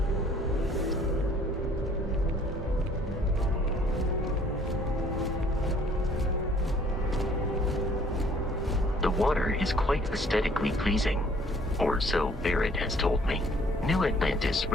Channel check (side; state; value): both; normal; correlation 0.58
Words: The water is quite aesthetically pleasing, or so Barrett has told me. New Atlantis